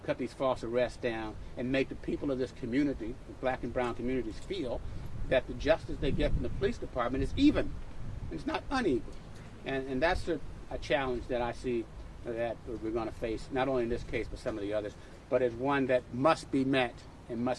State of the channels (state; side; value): identical; both; correlation 1.00